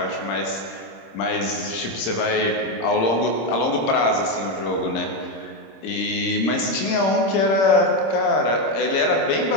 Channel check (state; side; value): late; right; 26 ms